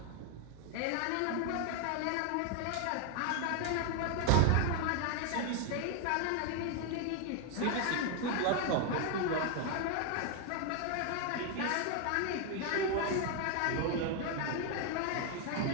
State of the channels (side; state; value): both; different; correlation 0.01